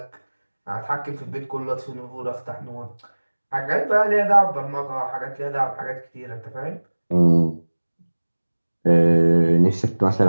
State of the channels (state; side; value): inverted; both; correlation -1.00